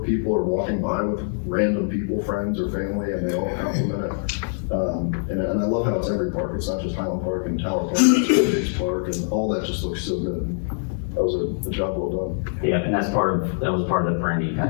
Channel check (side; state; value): right; silent; digital silence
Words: people or walking by with random people, friends or family, and they all compliment it. And I love how it's every park. It's not just Highland Park and Tower Park, it's Biggs Park, and all that just looks so good. That was a job well done. Yeah, and that was part of the branding